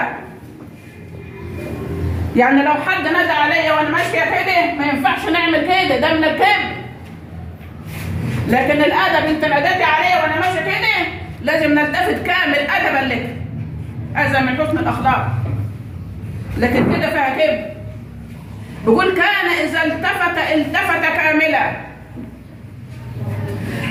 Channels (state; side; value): identical; both; correlation 1.00